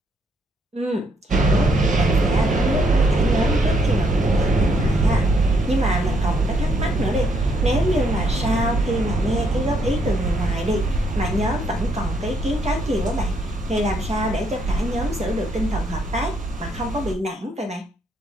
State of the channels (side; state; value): both; normal; correlation 0.72